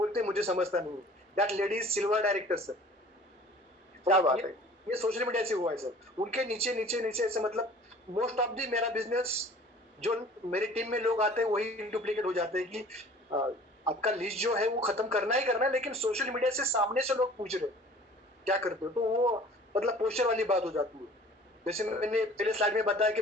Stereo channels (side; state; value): both; normal; correlation 0.48